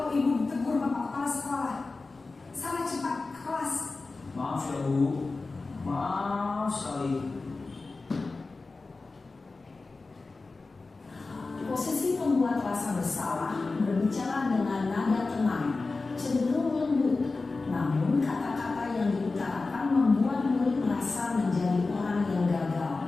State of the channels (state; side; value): quieter; right; 3.7 dB